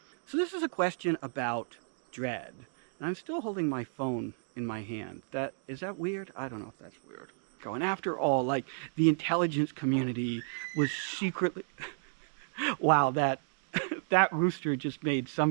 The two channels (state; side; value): silent; left; digital silence